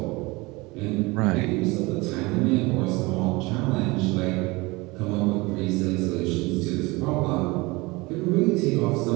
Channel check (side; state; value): left; quieter; 23.7 dB